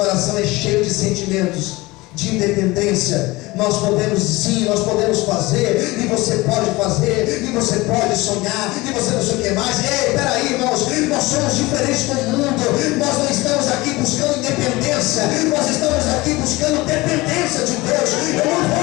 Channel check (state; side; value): quieter; right; 21.4 dB